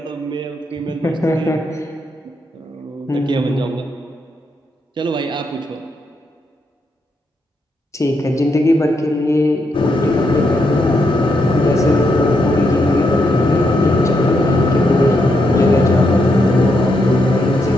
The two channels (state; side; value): normal; both; correlation 0.80